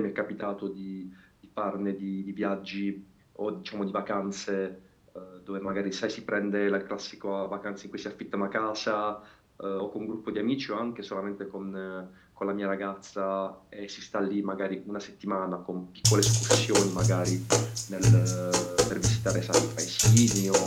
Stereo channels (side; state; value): both; identical; correlation 1.00